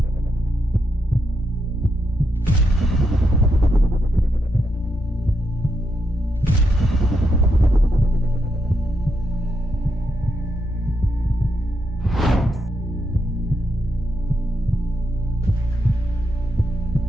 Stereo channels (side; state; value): both; normal; correlation 0.81